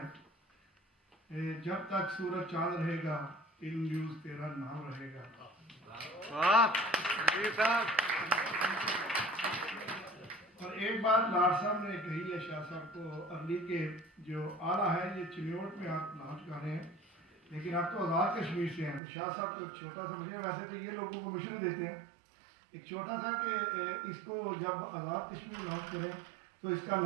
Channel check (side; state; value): left; drops out; at 19.0 s